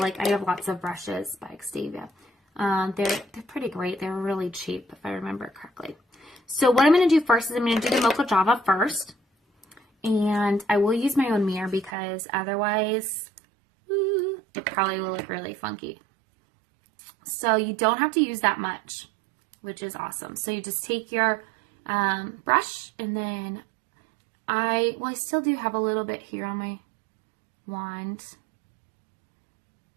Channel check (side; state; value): left; drops out; at 12.0 s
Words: I have lots of brushes by Xtavia. They're pretty great. They're really cheap, if I remember correctly. So what I'm going to do first is I'm going to do the Mocha Java first. And I will use my own mirror because otherwise, it probably will look really funky. So you don't have to use that much, which is awesome. So you just take your brush, and then I still do have a little bit here on my wand.